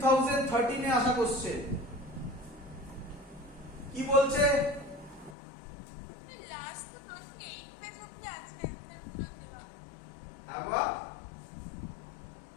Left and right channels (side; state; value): right; drops out; at 5.4 s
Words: এ আসা কোশ্চেন। কি বলছে? হ্যাঁ বাবা,